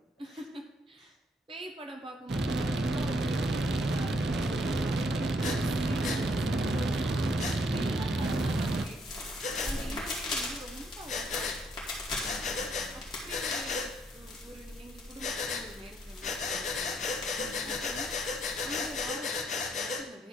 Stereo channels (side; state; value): both; normal; correlation 0.70